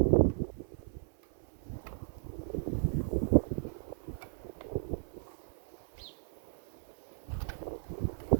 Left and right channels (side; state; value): left; silent; 54 dB below the other